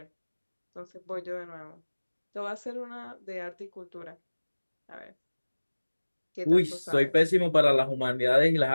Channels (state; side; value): inverted; both; correlation -1.00